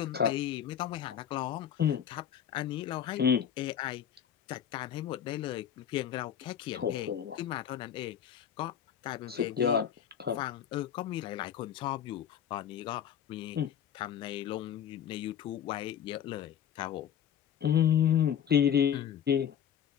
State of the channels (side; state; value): right; quieter; 9.2 dB